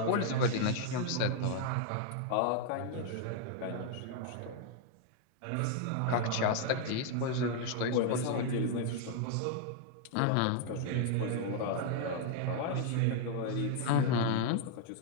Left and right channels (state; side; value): different; both; correlation 0.00